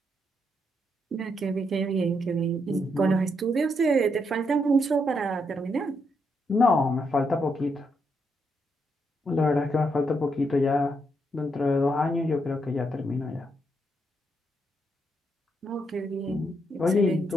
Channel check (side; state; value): both; normal; correlation 0.78